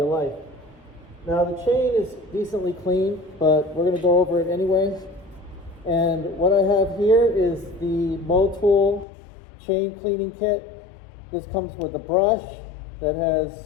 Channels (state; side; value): drops out; right; at 9.1 s